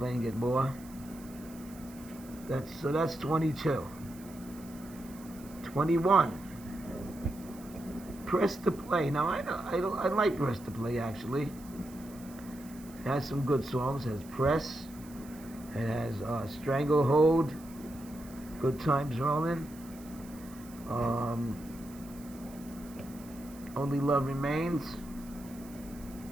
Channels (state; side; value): noise; right; hiss, 21 dB below the sound